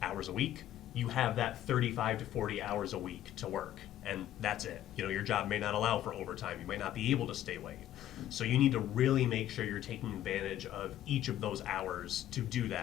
hours a week. You have that 35 to 40 hours a week to work, and that's it. You know, your job may not allow for overtime. You might not be able to stay late. So you need to really make sure you're taking advantage of each of those hours to do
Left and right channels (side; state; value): right; quieter; 12.3 dB